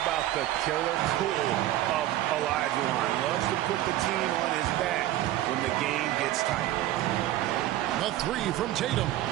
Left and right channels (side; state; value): left; quieter; 14.2 dB